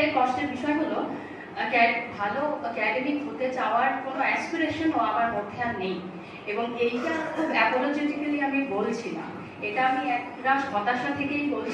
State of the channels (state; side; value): identical; both; correlation 1.00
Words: কষ্টের বিষয় হলো ভালো একাডেমিক হতে চাওয়ার কোনো অ্যাসপিরেশনও আমার মধ্যে আর নেই, এবং এইটা খুব অ্যাপোলজেটিক্যালি আমি বলছি না, এটা আমি একটা হতাশা থেকেই